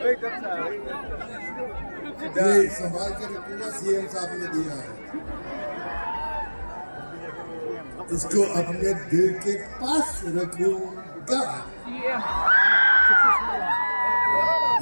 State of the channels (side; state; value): both; inverted; correlation -1.00